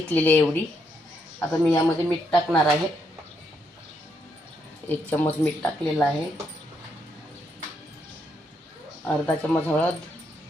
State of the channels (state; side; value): normal; both; correlation 0.77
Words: आहे एवढी. आता मी यामध्ये मीठ टाकणार आहे. 1 चम्मच मीठ टाकलेलं आहे. अर्धा चम्मच हळद,